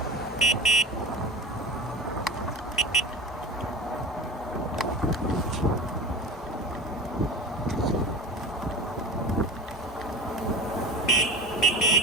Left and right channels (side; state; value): both; normal; correlation 0.32